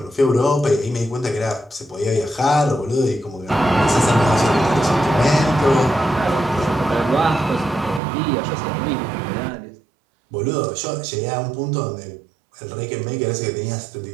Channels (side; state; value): left; drops out; at 8.0 s